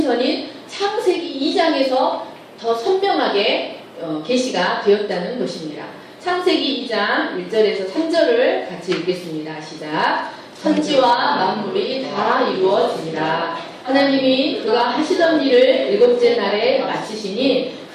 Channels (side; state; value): both; identical; correlation 1.00